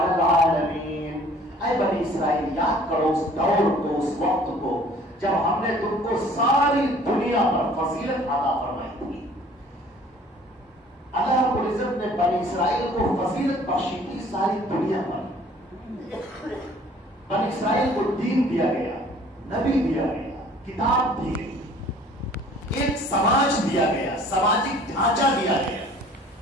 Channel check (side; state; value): both; normal; correlation 0.53